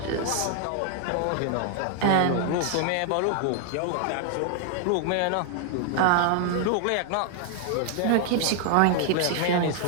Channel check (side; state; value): both; different; correlation 0.00